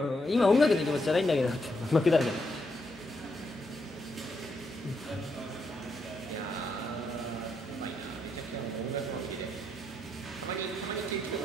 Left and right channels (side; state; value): both; normal; correlation 0.79